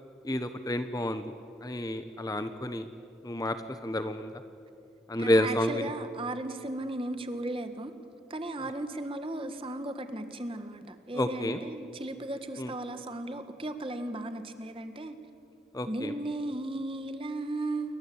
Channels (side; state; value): both; normal; correlation 0.73